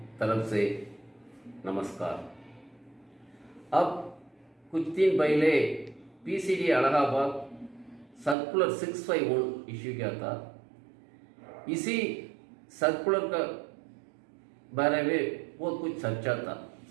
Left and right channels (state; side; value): drops out; left; at 8.3 s